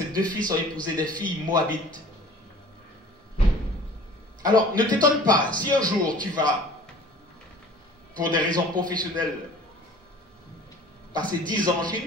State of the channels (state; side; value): normal; both; correlation 0.46